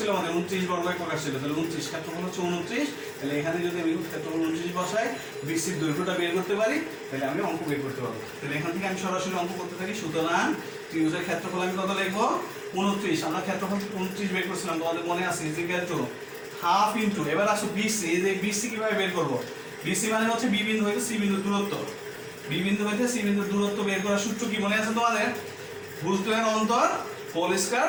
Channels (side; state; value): both; identical; correlation 1.00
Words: আমাদের? 29 বর্গ একক আসছিল। তাহলে 29 ক্ষেত্রফল হচ্ছে 29। তাহলে এখানে যদি আমি ক্ষেত্রফল 29 বসাই, বিসির দৈর্ঘ্যটা বের করতে পারি, তাহলে আমি অঙ্ক বের করতে পারবো। তাহলে এখান থেকে আমি সরাসরি অঙ্ক করতে থাকি। সুতরাং ত্রিভুজের ক্ষেত্রফল আমি কত লিখবো? 29। আমরা ক্ষেত্রফল 29 বের করছিলাম, তোমাদের মনে আছে, ইকুয়াল টু হাফ ইন্টু, এবার আসো বিসি। এই যে বিসি কিভাবে বের করবো? বিসি মানে হচ্ছে বি বিন্দু হইতে সি বিন্দুর দূরত্ব। বি বিন্দু হইতে সি বিন্দুর দূরত্ব বের করার সূত্র কি মনে আছে তোমাদের? ভুজদ্বয়ের অন্তর হোল